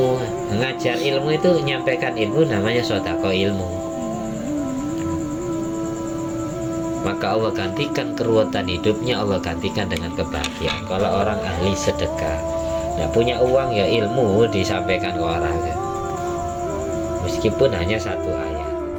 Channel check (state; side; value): identical; both; correlation 1.00